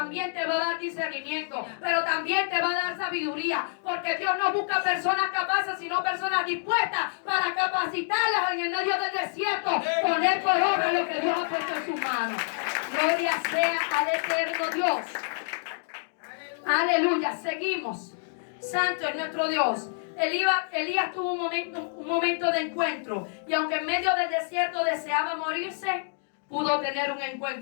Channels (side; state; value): right; silent; digital silence